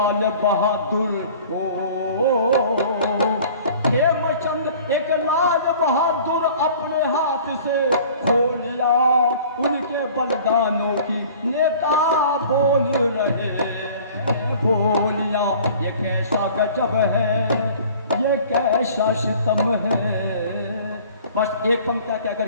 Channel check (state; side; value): inverted; both; correlation -0.48